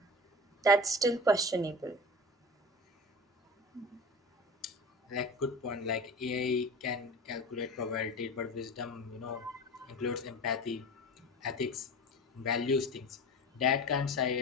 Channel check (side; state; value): both; normal; correlation 0.33